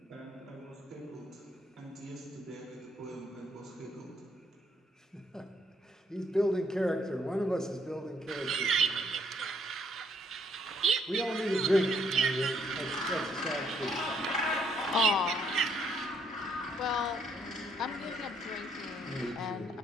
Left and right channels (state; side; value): normal; both; correlation 0.69